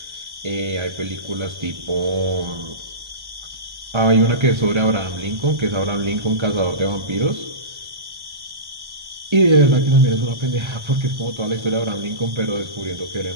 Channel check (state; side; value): late; left; 1.1 ms